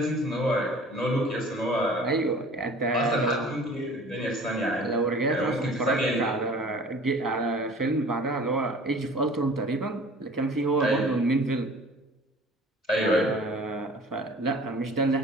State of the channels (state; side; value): normal; both; correlation 0.46